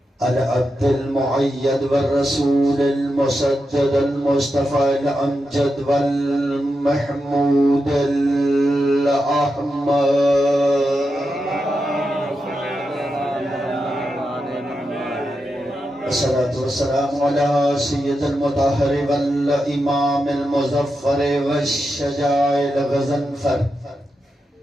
العبد المعيد والرسول المسدد المصطفى الأمجد والمحمود الأحمد الصلاة والسلام على سيد المطهر والإمام المظفر والشجاع الغزنفر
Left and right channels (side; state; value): both; normal; correlation 0.87